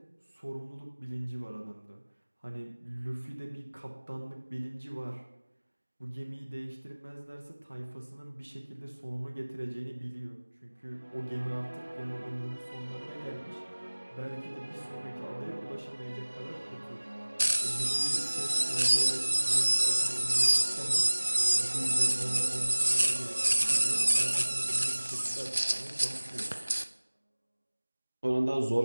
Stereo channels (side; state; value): both; inverted; correlation -1.00